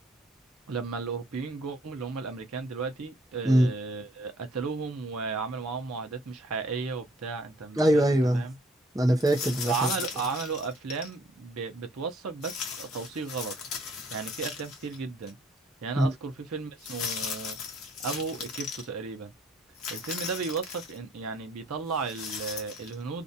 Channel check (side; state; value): both; normal; correlation 0.60